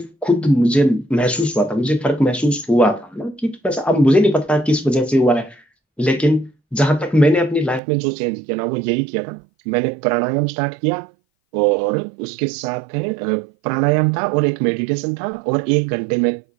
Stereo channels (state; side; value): drops out; left; at 7.8 s